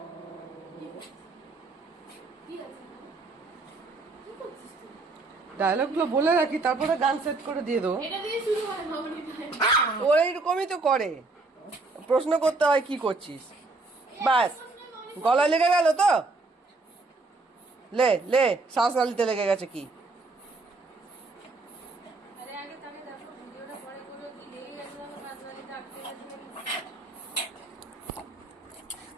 ডায়লগ গুলো বলে রাখি, তারপরে গান সেট করে দিয়ে দেবো। ও এইরকমই তো করে, প্রশ্ন করতে হয় কি করছিস, ব্যাস। গলায় লেগে গেল তো, লে লে, শ্বাস নালিতে লেগে গেছে কি?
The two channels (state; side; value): quieter; left; 3.5 dB